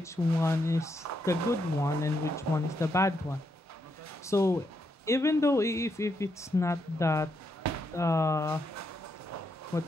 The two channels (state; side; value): normal; both; correlation 0.80